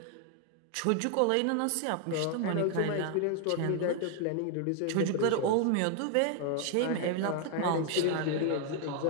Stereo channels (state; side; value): different; both; correlation 0.00